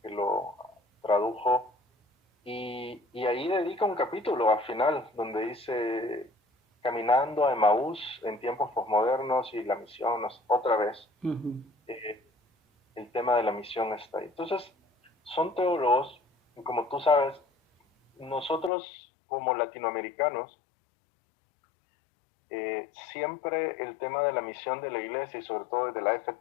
que lo tradujo, y ahí dedica un capítulo al final, donde dice, caminando a Emaús en tiempos posmodernos y la misión, otra vez, el tema de la misión está ahí. Entonces, son teólogos, y como tú sabes, nosotros como latinoamericanos, siempre el tema de la misión de la iglesia, y sobre todo de la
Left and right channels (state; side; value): drops out; right; at 18.7 s